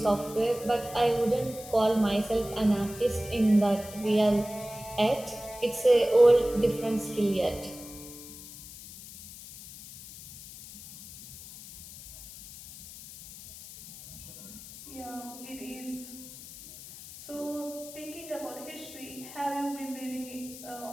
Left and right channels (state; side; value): noise; left; hiss, 15 dB below the sound